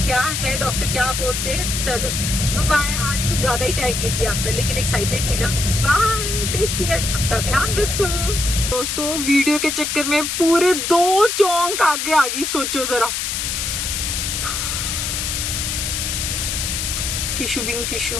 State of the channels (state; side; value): noise; left; hiss, 2 dB below the sound